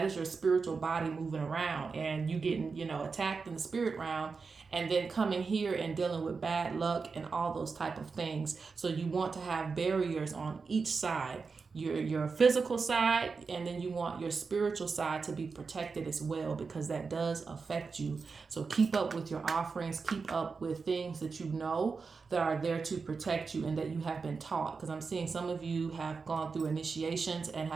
is your spiritual body moving around and you getting, attacked in the spirit realm, and then coming here and dealing with bad luck and all those type of things. So you want to have barriers on each side, your physical side, and then you want your spiritual side to be protected as well, because that does affect you. So keep up with your offerings, keep up with things that you know that are there to protect you and that you have been taught, because I'm seeing some of you have gone through initiations and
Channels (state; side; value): quieter; left; 4.8 dB